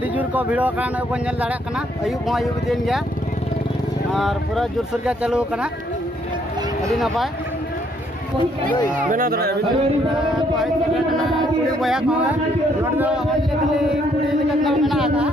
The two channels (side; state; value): both; normal; correlation 0.69